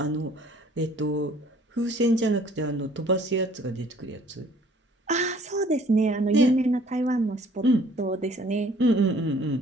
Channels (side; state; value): both; normal; correlation 0.56